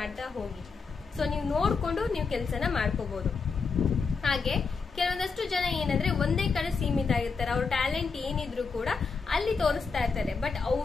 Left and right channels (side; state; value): right; quieter; 4.9 dB